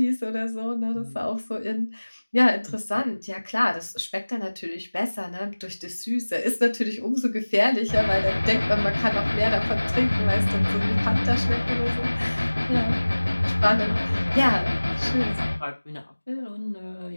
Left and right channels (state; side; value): inverted; both; correlation -1.00